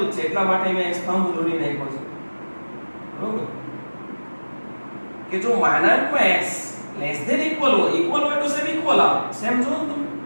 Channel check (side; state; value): both; inverted; correlation -1.00